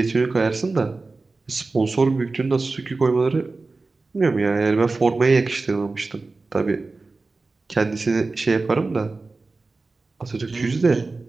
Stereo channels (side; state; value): left; quieter; 3.7 dB